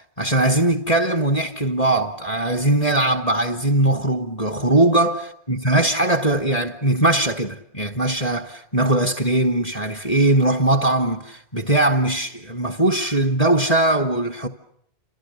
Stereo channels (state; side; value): late; right; 2.1 ms